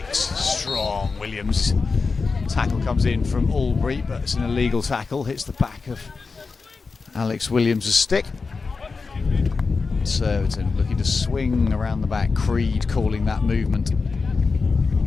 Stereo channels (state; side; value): quieter; right; 4.5 dB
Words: Strong Williams. Tackle comes in from Albury, but it's an illegal tackle. Hits the back of Alex Williams' stick. Surbiton looking to swing around the back. Creed calling that movement.